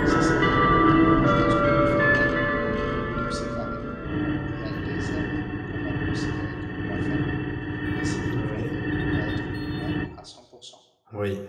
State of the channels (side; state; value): both; identical; correlation 1.00